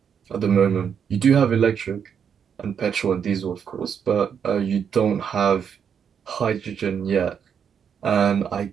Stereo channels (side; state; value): left; quieter; 7.5 dB